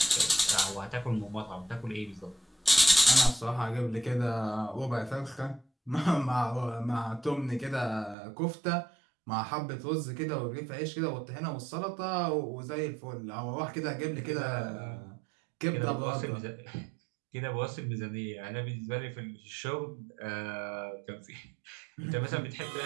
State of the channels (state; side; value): drops out; left; at 8.2 s